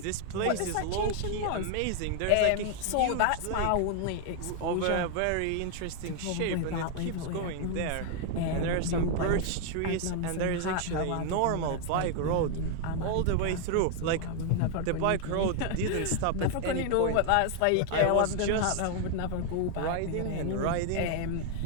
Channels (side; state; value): both; different; correlation 0.00